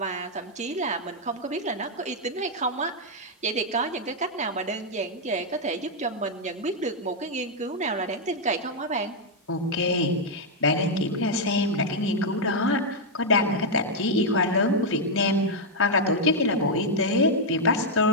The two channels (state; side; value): normal; both; correlation -0.02